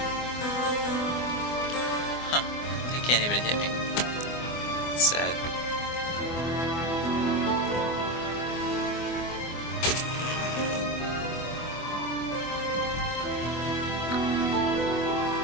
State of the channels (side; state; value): right; late; 24 ms